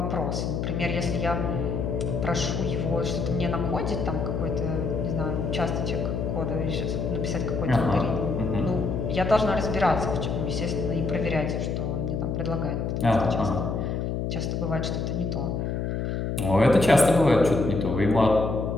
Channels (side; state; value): left; noise; hum, 1 dB below the sound